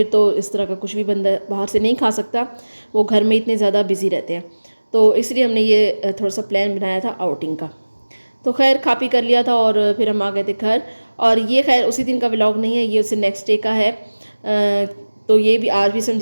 तो इस तरह का कुछ भी बंदा बाहर से नहीं खा सकता, वो घर में इतने ज़्यादा बिज़ी रहते हैं। तो इसलिए हमने ये थोड़ा सा प्लान बनाया था आउटिंग का। तो खैर खा पी कर लिया था और फिर हम आ गए थे घर। और ये खैर उसी दिन का व्लॉग नहीं है, ये उससे नेक्स्ट डे का है। तो ये भी आज भी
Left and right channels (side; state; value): both; inverted; correlation -1.00